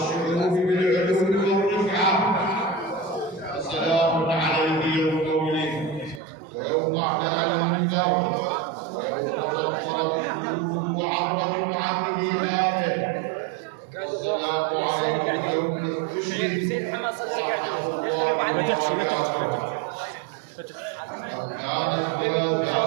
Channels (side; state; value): left; drops out; at 6.2 s